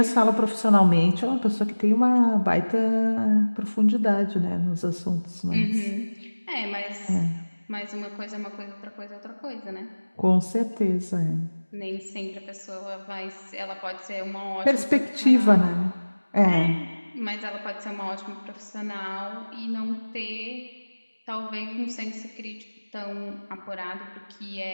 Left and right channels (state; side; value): inverted; both; correlation -1.00